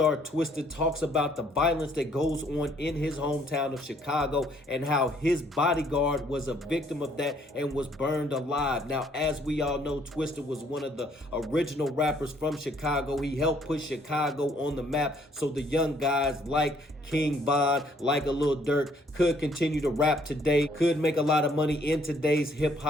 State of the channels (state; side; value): normal; both; correlation 0.65